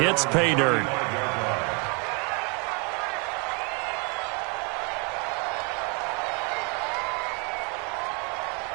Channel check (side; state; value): left; quieter; 34.3 dB